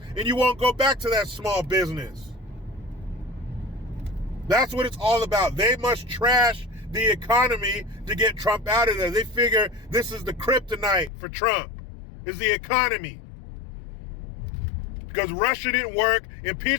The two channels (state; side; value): drops out; right; at 11.1 s